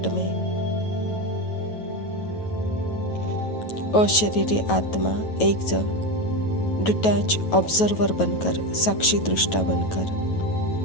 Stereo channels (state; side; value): late; right; 9.2 ms